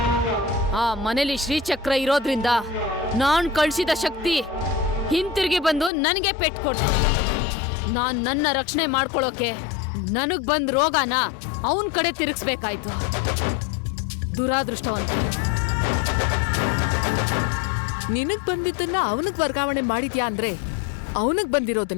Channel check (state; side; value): drops out; right; at 5.9 s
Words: ಆ ಮನೇಲಿ ಶ್ರೀಚಕ್ರ ಇರೋದ್ರಿಂದ ನಾನ್ ಕಳ್ಸಿದ ಶಕ್ತಿ ಹಿಂತಿರುಗಿ ಬಂದು ನನಗೆ ಪೆಟ್ಟು ಕೊಟ್ಟು ನಾನ್ ನನ್ನ ರಕ್ಷಣೆ ಮಾಡ್ಕೊಳ್ಳೋಕೆ ನನಗ್ ಬಂದ್ ರೋಗನ ಅವನ್ ಕಡೆ ತಿರುಗಿಸ್ಬೇಕಾಯ್ತು. ದುರಾದೃಷ್ಟವಂತ. ನಿನಗ್ ಬಂದಿದ್ದನ್ನ ಅವನಿಗೆ ವರ್ಗಾವಣೆ ಮಾಡಿದ್ಯಾ ಅಂದ್ರೆ ಅವನಿಗೆ